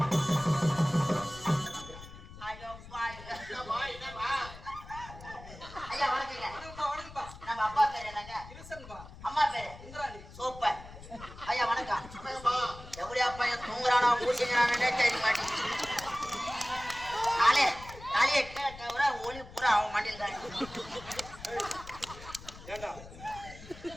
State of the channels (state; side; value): noise; left; rumble, 16 dB below the sound